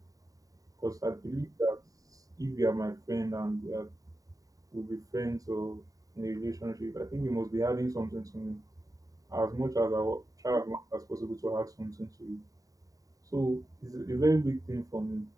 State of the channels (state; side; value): late; left; 0.17 ms